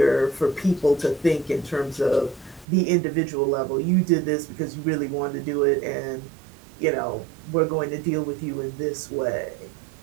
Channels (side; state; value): left; drops out; at 2.7 s